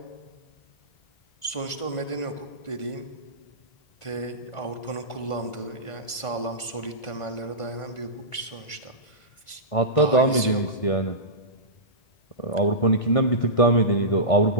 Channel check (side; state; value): right; late; 1.5 ms